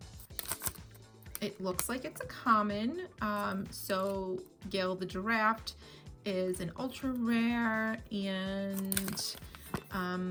It looks like it's a common. So Gail the giraffe is an ultra rare, and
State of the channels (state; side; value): identical; both; correlation 1.00